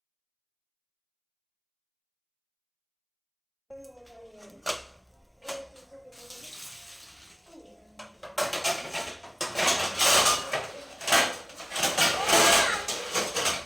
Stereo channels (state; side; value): identical; both; correlation 1.00